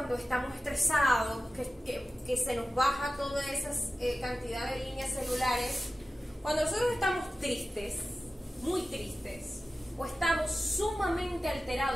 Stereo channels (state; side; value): normal; both; correlation 0.95